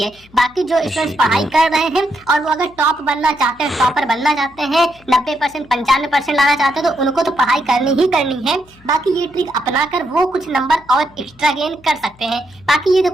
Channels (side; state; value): left; noise; hum, 27 dB below the sound